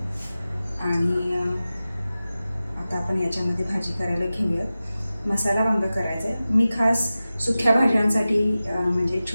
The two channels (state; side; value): inverted; both; correlation -0.95